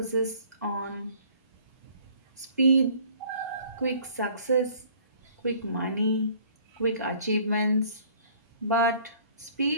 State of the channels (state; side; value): inverted; both; correlation -0.55